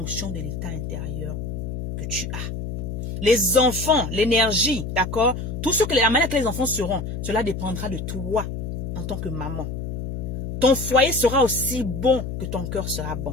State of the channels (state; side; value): noise; left; hum, 5 dB below the sound